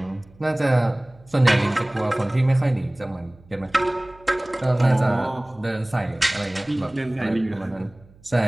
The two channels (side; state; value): right; noise; hum, 27 dB below the sound